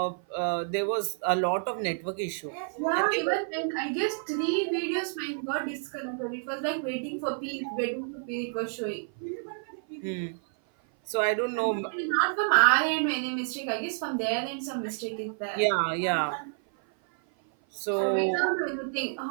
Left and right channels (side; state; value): left; silent; 56 dB below the other